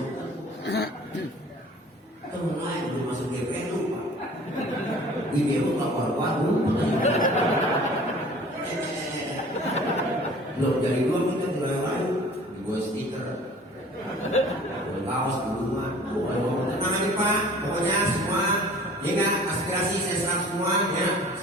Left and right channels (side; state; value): both; normal; correlation 0.47